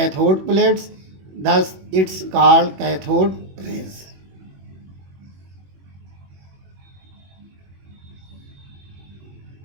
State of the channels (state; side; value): late; left; 21 ms